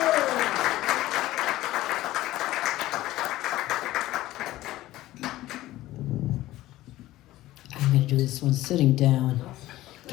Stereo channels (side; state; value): right; quieter; 16.1 dB